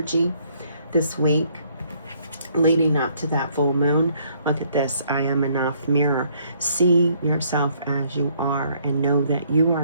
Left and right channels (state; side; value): inverted; both; correlation -0.66